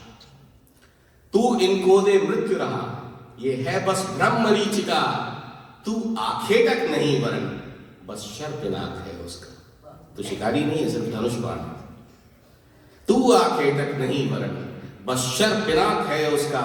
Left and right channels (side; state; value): both; identical; correlation 1.00